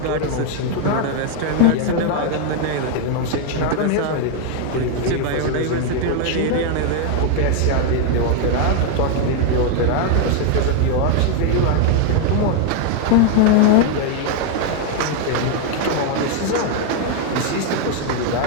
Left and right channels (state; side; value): different; both; correlation 0.00